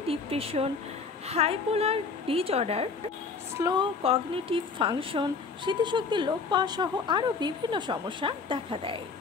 depression, bipolar disorder, slow cognitive function, স্মৃতিশক্তি লোপ পাওয়া সহ আরও বিভিন্ন সমস্যা দেখা দেয়।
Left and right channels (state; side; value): quieter; right; 4.8 dB